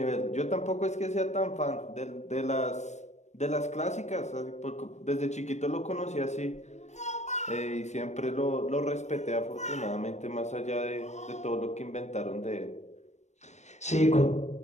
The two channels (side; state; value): right; late; 0.33 ms